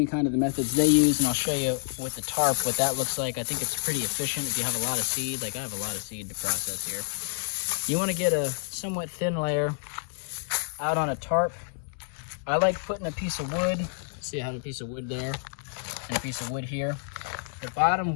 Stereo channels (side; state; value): right; silent; digital silence